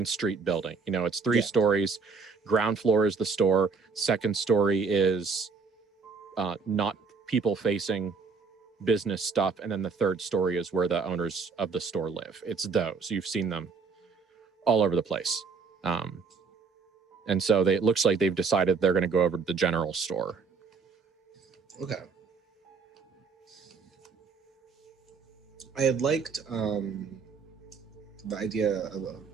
Street building. It's 3 stories. Ground floor is the store. Second story is not people facing business stuff, and then the third story is where the owners of the store live. It's those. You've seen them all over the place. And so it looks like they've decided they're going to go over to the general store. Okay. I had liked the idea of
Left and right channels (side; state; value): left; quieter; 4.9 dB